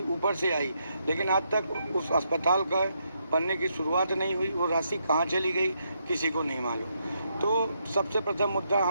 ऊपर से आई, लेकिन आज तक उस अस्पताल का बनने की शुरुआत नहीं हुई। वो राशि कहाँ चली गई किसी को नहीं मालूम। तो सबसे प्रथम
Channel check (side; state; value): both; inverted; correlation -0.78